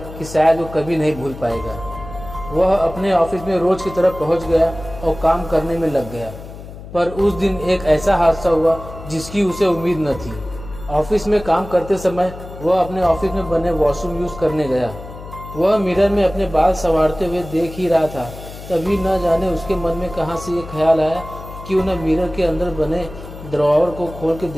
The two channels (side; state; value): left; noise; hum, 14 dB below the sound